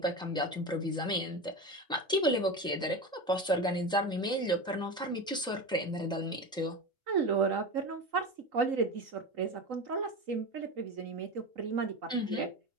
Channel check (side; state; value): both; normal; correlation 0.25